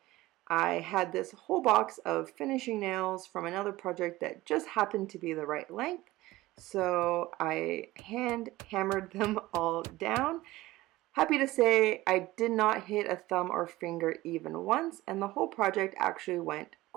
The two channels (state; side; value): quieter; left; 18.0 dB